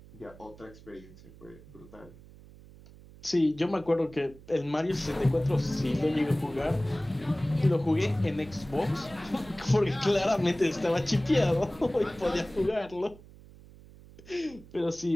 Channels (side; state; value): right; noise; hum, 21 dB below the sound